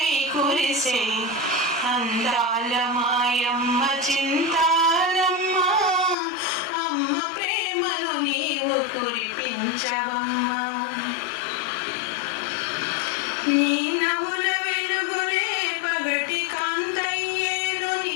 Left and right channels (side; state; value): right; drops out; at 6.2 s